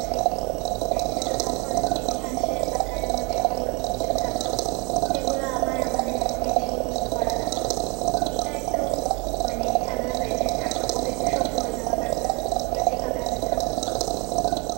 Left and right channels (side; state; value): left; quieter; 29.0 dB